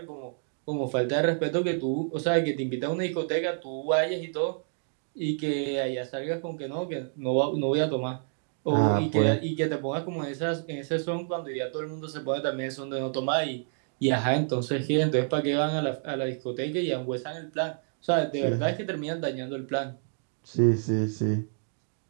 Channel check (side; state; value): left; silent; digital silence